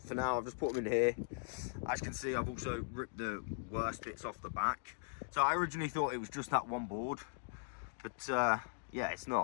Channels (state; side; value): silent; right; digital silence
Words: now, I've just put them in here. As you can see, I've also ripped the worst bits off the back. So I originally thought it was just that one board, but yeah, it's